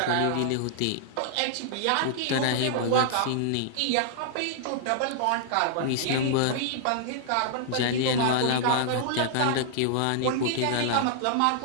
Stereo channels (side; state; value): both; different; correlation -0.01